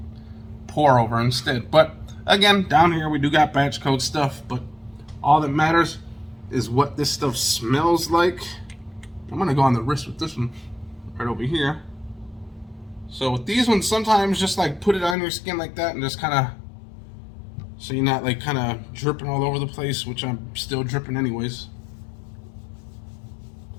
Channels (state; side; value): drops out; right; at 15.2 s